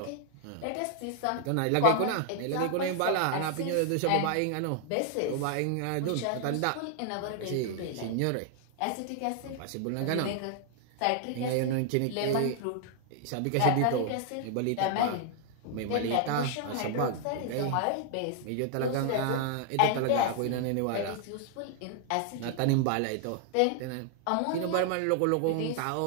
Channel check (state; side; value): different; both; correlation 0.00